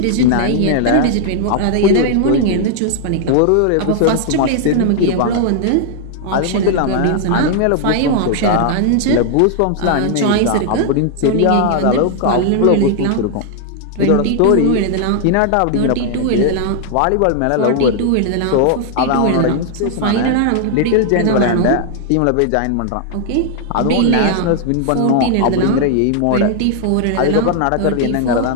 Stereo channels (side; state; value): both; different; correlation 0.00